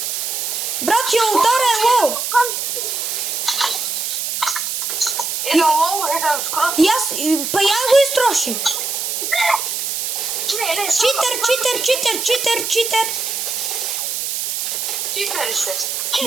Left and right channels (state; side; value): noise; right; hiss, 2 dB below the sound